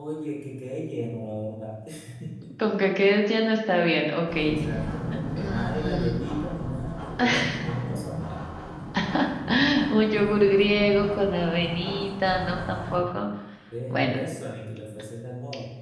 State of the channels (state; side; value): identical; both; correlation 1.00